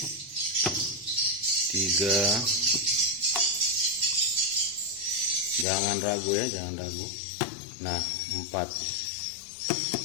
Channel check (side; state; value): right; drops out; at 5.7 s